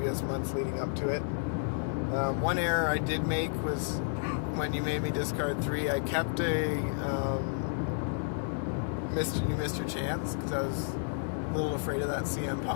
months leading up to it. One error I did make was when you made me discard 3, I kept you missed your chance, because I was a little afraid of that CM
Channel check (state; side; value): silent; right; digital silence